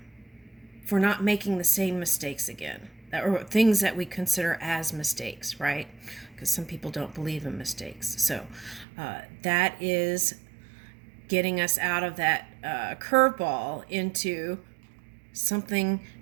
for not making the same mistakes again. or things that we consider as mistakes, right? Because some people don't believe in mistakes. So that is getting us out of that curveball into something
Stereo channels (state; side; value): drops out; left; at 8.8 s